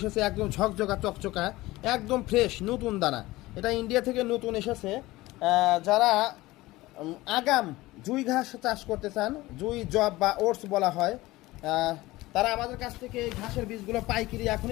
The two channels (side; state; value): right; quieter; 19.0 dB